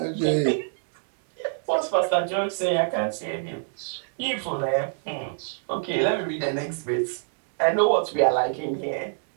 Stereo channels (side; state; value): left; silent; digital silence